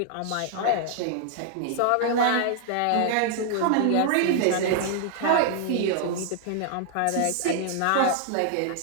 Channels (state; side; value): different; both; correlation 0.00